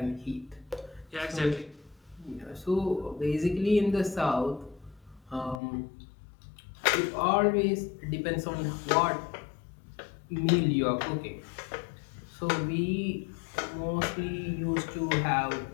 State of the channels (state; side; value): drops out; right; at 5.6 s